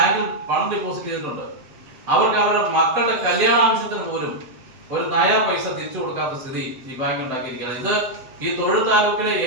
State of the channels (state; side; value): late; left; 7.6 ms